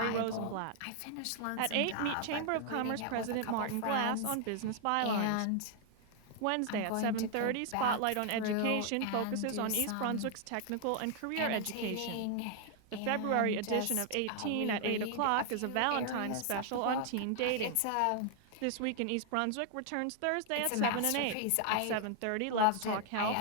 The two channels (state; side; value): different; both; correlation 0.00